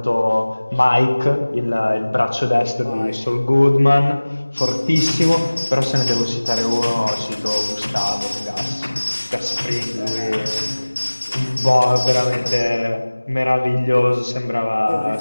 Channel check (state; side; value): inverted; both; correlation -1.00